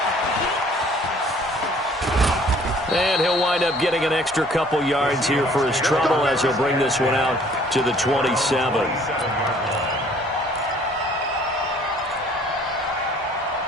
And he'll wind up getting an extra couple yards here for his trouble as he'll bring this one out to the 27.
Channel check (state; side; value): normal; both; correlation 0.56